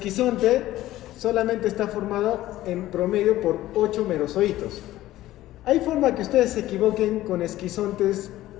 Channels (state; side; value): quieter; right; 15.2 dB